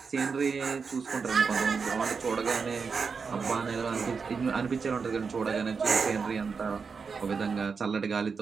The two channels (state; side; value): quieter; left; 5.3 dB